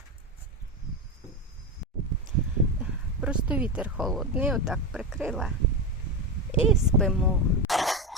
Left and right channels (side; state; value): both; normal; correlation 0.15